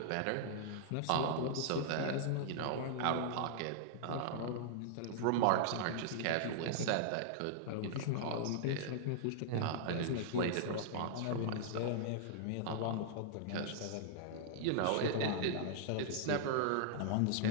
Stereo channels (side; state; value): both; different; correlation -0.01